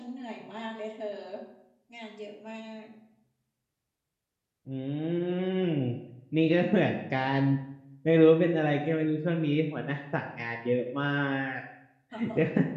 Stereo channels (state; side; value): identical; both; correlation 1.00